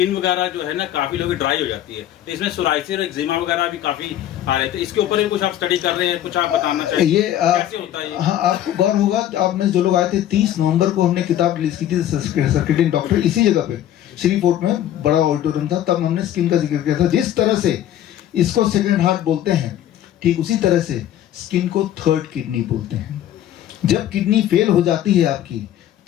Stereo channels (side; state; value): right; quieter; 11.8 dB